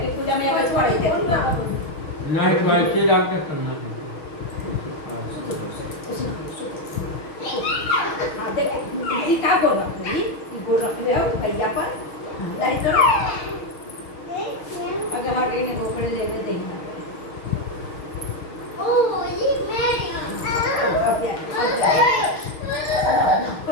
पूजा में आकर छोड़ देते नहीं तो ऐसे डाल के करना है हाँ देख ये क्या बोल रहा हूँ ये बोल रखे हो भैया पर नहीं करो अगर आगे ने गोकड़े ले ले देना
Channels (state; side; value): late; right; 6.3 ms